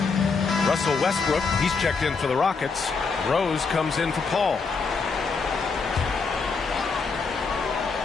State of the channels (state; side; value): quieter; right; 4.8 dB